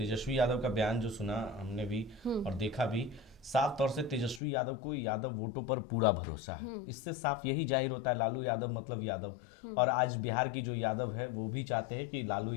यादव का बयान जो सुना हमने भी और देखा भी, साफ तौर से तेजस्वी यादव को यादव वोटों पर पूरा भरोसा है। इससे साफ यही जाहिर होता है, लालू यादव मतलब यादव, और आज बिहार की जो यादव है वो भी चाहते हैं कि लालू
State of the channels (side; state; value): right; drops out; at 4.4 s